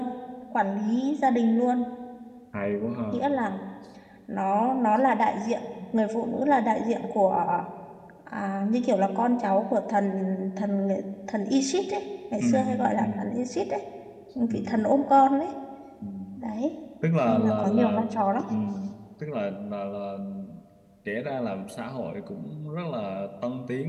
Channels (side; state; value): both; identical; correlation 1.00